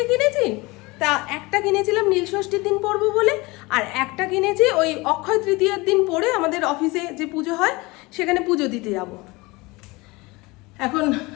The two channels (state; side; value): quieter; right; 23.6 dB